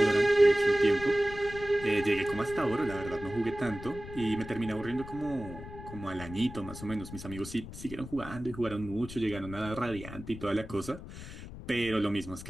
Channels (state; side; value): noise; left; rumble, 12 dB below the sound